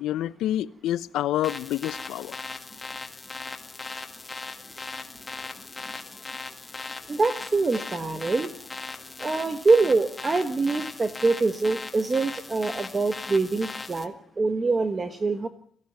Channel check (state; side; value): normal; both; correlation 0.86